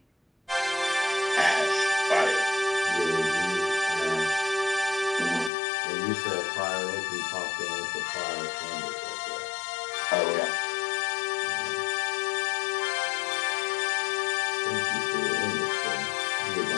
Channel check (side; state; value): right; drops out; at 5.5 s